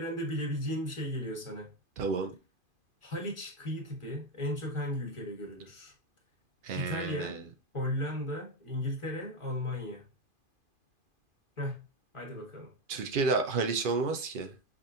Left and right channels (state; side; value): late; left; 2.5 ms